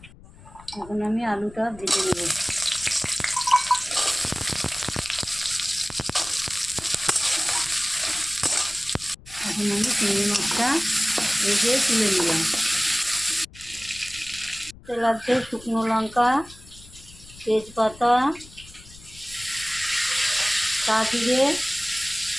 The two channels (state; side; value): noise; left; rumble, 21 dB below the sound